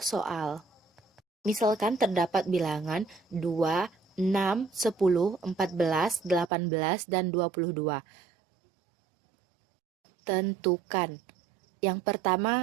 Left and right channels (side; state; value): left; drops out; at 6.5 s